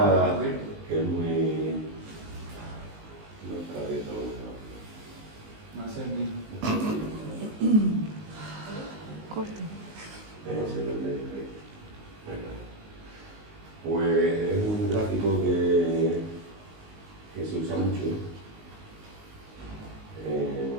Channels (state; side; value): late; left; 19 ms